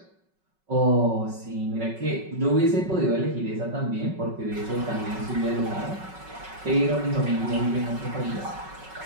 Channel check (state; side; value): late; left; 5.4 ms